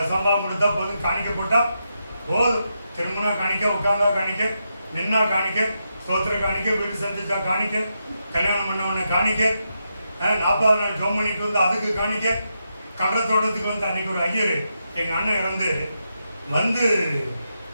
கொடுத்தா போதும், காணிக்க போட்டா போதும். திரும்பினா காணிக்க, உட்கார்ந்தா காணிக்க, நின்னா காணிக்க, சோத்திர காணிக்க, வீடு சந்திச்சா காணிக்க, கல்யாணம் பண்ண உடனே காணிக்க, 40 நாள் ஜோம் பண்ணிட்டு வந்து அதுக்கு காணிக்க, கடலை தோட்டத்துக்கு வந்து அன்னைக்கு ஒரு ஐயர் எங்க அண்ணன் இறந்து வந்து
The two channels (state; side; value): inverted; both; correlation -0.85